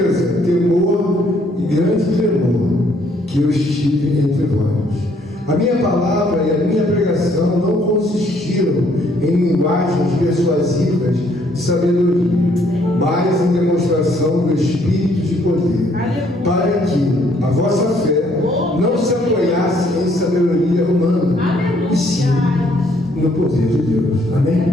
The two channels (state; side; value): normal; both; correlation 0.66